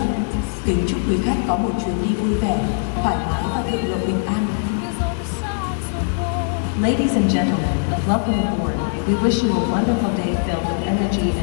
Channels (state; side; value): silent; right; digital silence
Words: Kính chúc quý khách có một chuyến đi vui vẻ, thoải mái và thượng lộ bình an. Ladies and gentlemen, welcome aboard. We wish you a wonderful day filled with energy